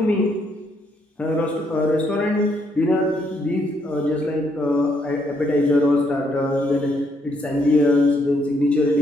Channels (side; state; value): both; normal; correlation 0.73